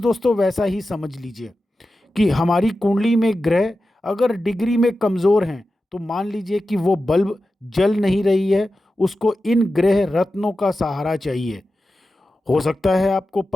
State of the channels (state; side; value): normal; both; correlation 0.92